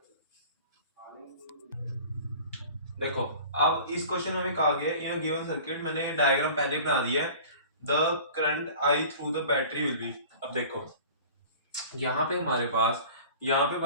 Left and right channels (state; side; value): inverted; both; correlation -0.42